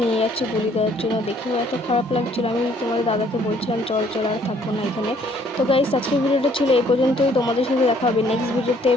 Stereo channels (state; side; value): normal; both; correlation 0.62